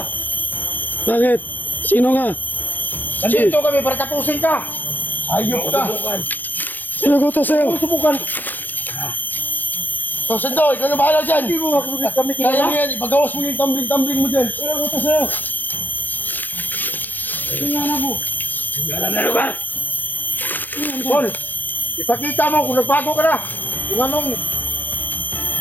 Bakit? Sino ka? Nandito kami para tapusin ka. Ayop ka. Subukan. Sino ko to sa'yo? Subukan. So, Sando, ikaw na bahala dyan. Hindi mo kami Kaya mo kilala. yan, ipagawas mo yung tumbling-tumbling mo dyan. Sino ko ito sa'yo? Tingnan na mo. Alam na lugar! Paul, ipakita mo kung nagbago ka na. Kung anong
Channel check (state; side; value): late; right; 0.086 ms